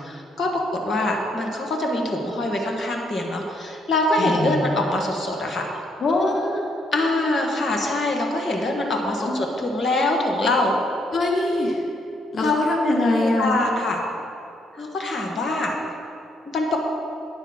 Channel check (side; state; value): both; normal; correlation 0.72